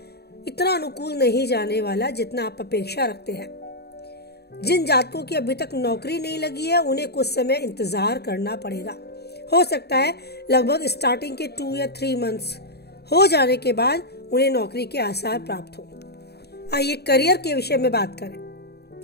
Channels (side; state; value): right; late; 0.47 ms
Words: इतना अनुकूल नहीं जाने वाला जितना आप अपेक्षा रखते हैं। जिन जातकों की अभी तक नौकरी नहीं लगी है, उन्हें कुछ समय इंतजार करना पड़ेगा। हो सकता है लगभग स्टार्टिंग के 2 या 3 मंथ्स हो जाने के बाद उन्हें नौकरी के आसार प्राप्त हो। आइए करियर के विषय में बात करें।